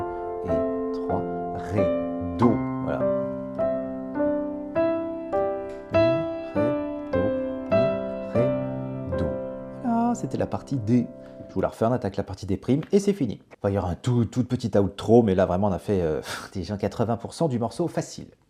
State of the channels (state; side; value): identical; both; correlation 1.00